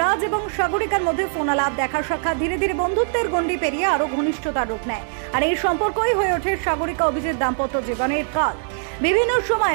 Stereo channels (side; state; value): left; silent; digital silence